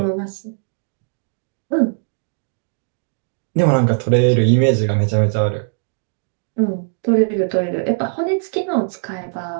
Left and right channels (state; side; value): silent; left; digital silence